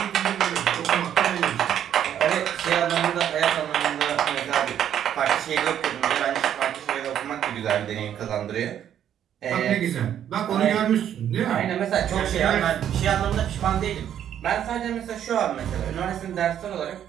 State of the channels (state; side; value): quieter; left; 10.0 dB